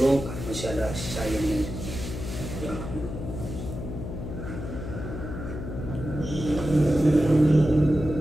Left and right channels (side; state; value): left; noise; hum, 7 dB below the sound